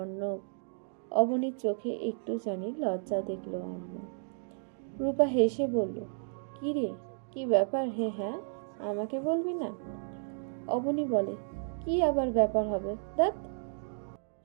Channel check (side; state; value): left; silent; digital silence